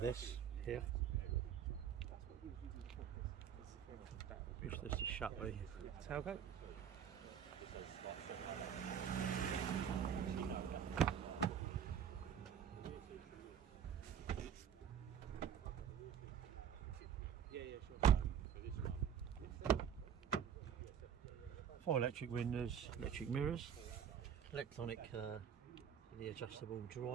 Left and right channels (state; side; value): quieter; left; 8.5 dB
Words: here. Push this to shut the tailgate. Four electric windows, electric mirrors, electronic, the adjustable